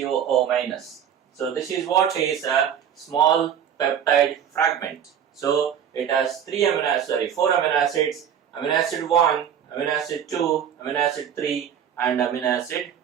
minus. So this is what is a small peptide fragment. So it has 4 amino acids, amino acid 1, amino acid 2, amino acid 3, and amino acid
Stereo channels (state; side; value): quieter; left; 8.9 dB